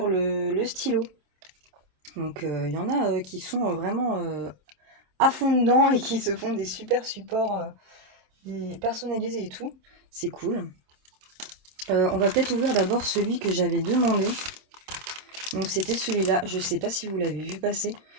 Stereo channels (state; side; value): late; left; 27 ms